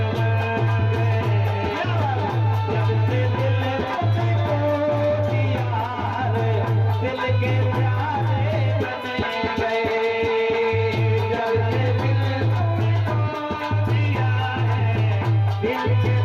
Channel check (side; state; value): both; identical; correlation 1.00